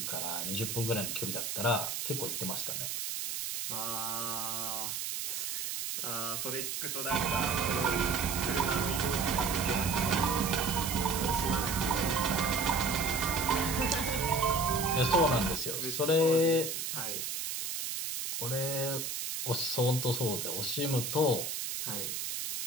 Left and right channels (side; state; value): right; noise; hiss, 3 dB below the sound